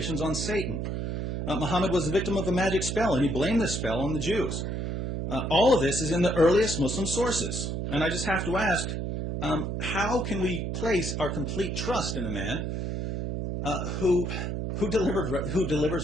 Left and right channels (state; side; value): noise; right; hum, 2 dB below the sound